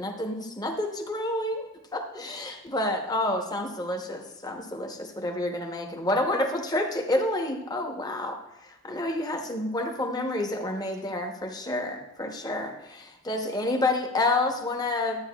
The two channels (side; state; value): both; normal; correlation 0.41